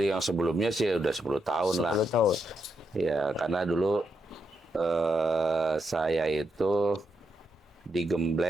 yang sebelumnya sih udah 10 tahun lah. 10 tahun. Ya karena dulu saya itu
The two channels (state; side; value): normal; both; correlation 0.82